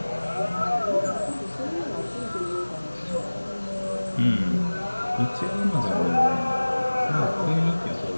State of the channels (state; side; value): inverted; both; correlation -1.00